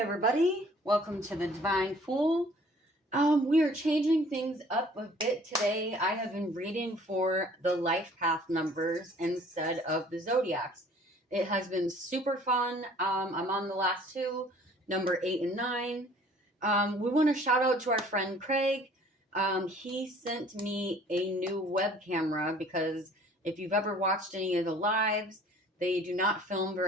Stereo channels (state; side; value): normal; both; correlation 0.53